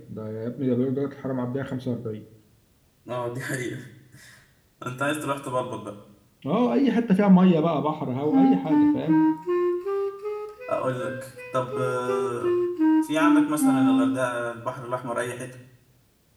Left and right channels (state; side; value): identical; both; correlation 1.00